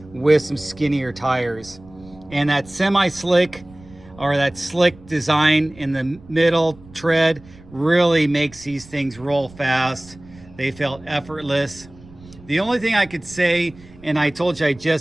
with some skinnier tires. And that semi-slick or that slick design in the middle tread really makes these things roll fast. They felt effortless. The only thing I could say, and I told you I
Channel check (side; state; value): right; noise; rumble, 22 dB below the sound